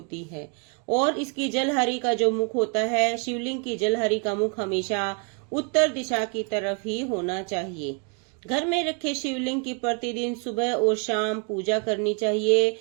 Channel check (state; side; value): quieter; left; 35.9 dB